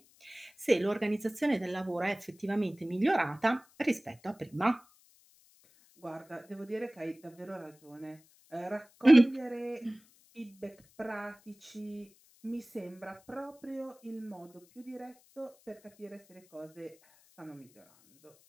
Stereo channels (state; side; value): noise; left; hiss, 29 dB below the sound